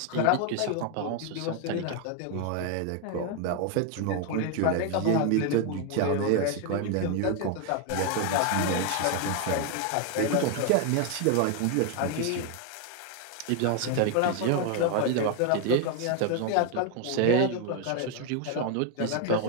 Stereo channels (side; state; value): both; different; correlation 0.01